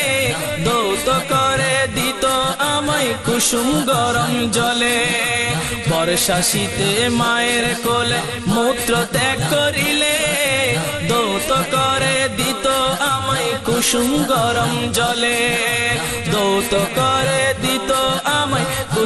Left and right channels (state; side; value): identical; both; correlation 1.00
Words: দৌত করে দিত আমায় কুসুম গরম জলে। বর্ষা শীতে মায়ের কোলে মূত্র ত্যাগ করিলে, দৌত করে দিত আমায় কুসুম গরম জলে, দৌত করে দিত আমায়